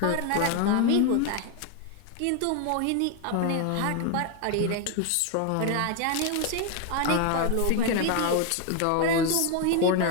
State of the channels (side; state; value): both; different; correlation 0.01